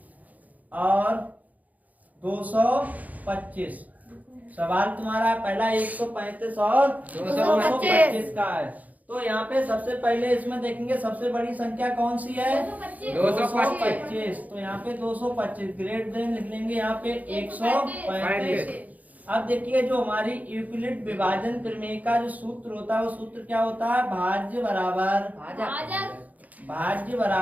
225। सवाल तुम्हारा पहला 135 और 225 का है। तो यहाँ पे सबसे पहले इसमें देखेंगे सबसे बड़ी संख्या कौन सी है, 225। तो यहाँ पे 225 ग्रेट देन लिख लेंगे यहाँ पे 135। अब देखिए जो हमारी यूक्लिड विभाजन प्रमेय का जो सूत्र होता है वो सूत्र क्या होता है, भाज्य बराबर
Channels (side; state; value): left; late; 0.077 ms